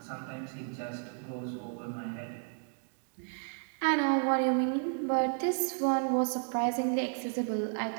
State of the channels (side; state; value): left; silent; 56 dB below the other